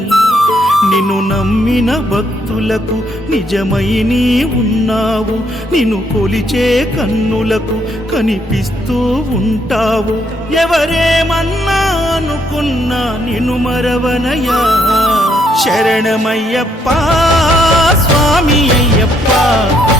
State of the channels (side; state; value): both; normal; correlation 0.72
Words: నిన్ను నమ్మిన భక్తులకు నిజమై నీ ఉన్నావు, నిన్ను కొలిచే కన్నులకు కనిపిస్తూ ఉంటావు. ఎవరేమన్నా అనుకున్నా నిన్ను మరవనయ్యా. శరణమయ్యప్ప స్వామి అయ్యప్ప,